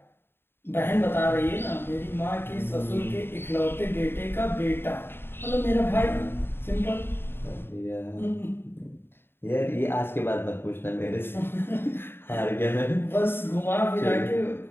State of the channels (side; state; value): right; late; 0.11 ms